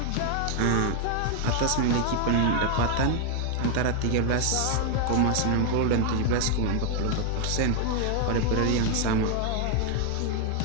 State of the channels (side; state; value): both; different; correlation 0.00